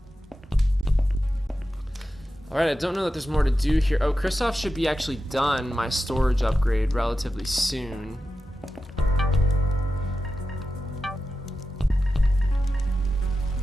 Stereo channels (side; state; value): both; normal; correlation 0.92